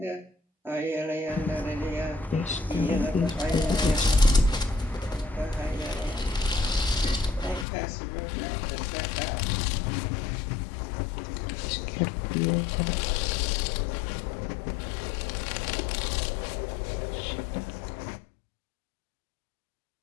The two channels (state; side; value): drops out; right; at 7.7 s